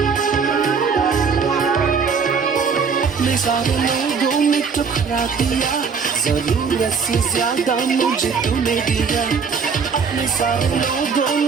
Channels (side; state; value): left; quieter; 5.7 dB